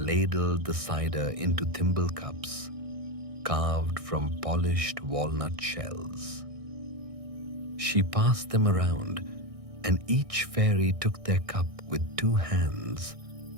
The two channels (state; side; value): late; left; 1.6 ms